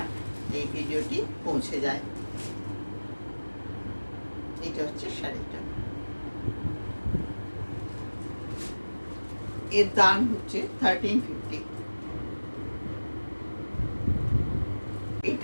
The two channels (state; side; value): inverted; both; correlation -1.00